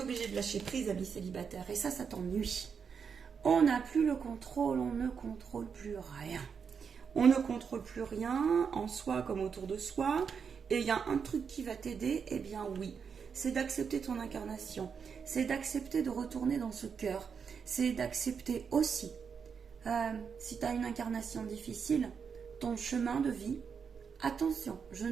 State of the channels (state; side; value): quieter; left; 6.4 dB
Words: de lâcher prise, ami célibataire. Et ça t'ennuie. On n'a plus le contrôle, on ne contrôle plus rien. On ne contrôle plus rien en soi comme autour de soi. Et il y a un truc qui va t'aider, eh bien oui. C'est d'accepter ton incarnation. C'est d'accepter de retourner dans ce cœur. C'est d'accepter aussi, si tu as une incarnation difficile, ton chemin de vie. Attention, je